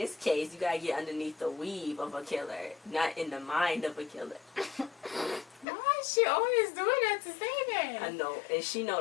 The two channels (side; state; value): right; drops out; at 5.7 s